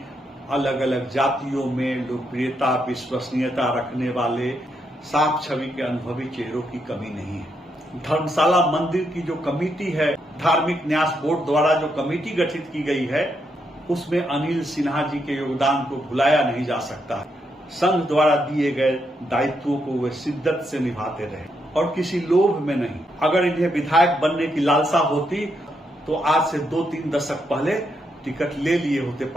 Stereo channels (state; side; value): normal; both; correlation 0.79